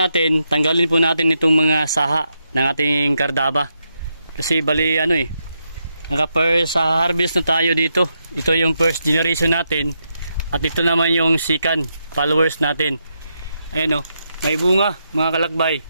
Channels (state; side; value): inverted; both; correlation -0.83